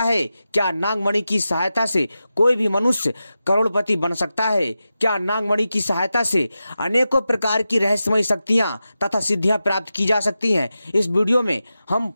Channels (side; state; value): both; inverted; correlation -0.92